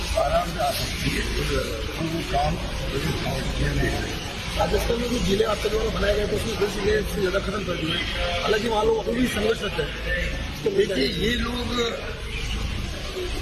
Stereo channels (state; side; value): identical; both; correlation 1.00